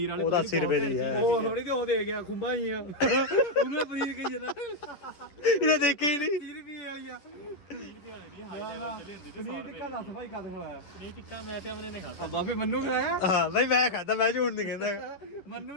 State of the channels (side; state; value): right; late; 10 ms